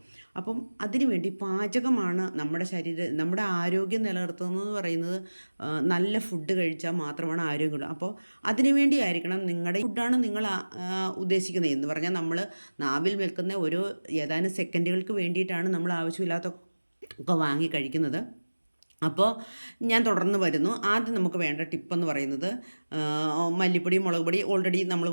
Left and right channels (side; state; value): both; inverted; correlation -1.00